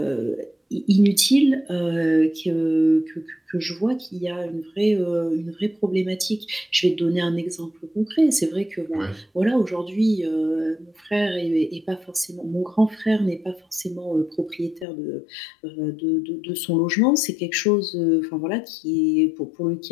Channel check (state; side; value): drops out; right; at 14.9 s